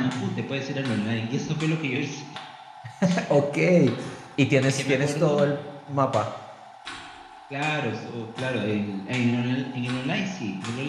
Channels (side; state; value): both; identical; correlation 1.00